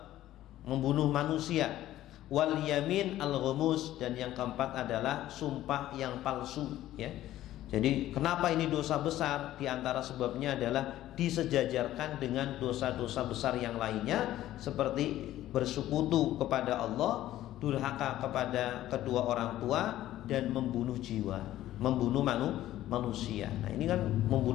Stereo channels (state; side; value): quieter; right; 13.9 dB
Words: membunuh manusia, wal yamin al-ghumus, dan yang keempat adalah sumpah yang palsu, ya. Jadi kenapa ini dosa besar? Di antara sebabnya adalah disejajarkan dengan dosa-dosa besar yang lainnya, seperti bersekutu kepada Allah, durhaka kepada kedua orang tua, dan membunuh jiwa, membunuh manusia. Nah, ini kan